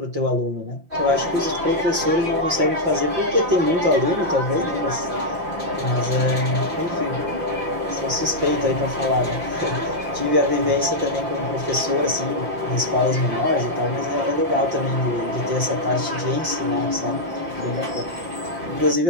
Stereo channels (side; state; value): left; late; 5.8 ms